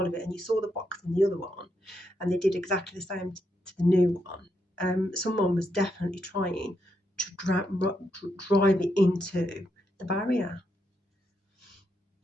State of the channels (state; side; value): normal; both; correlation 0.80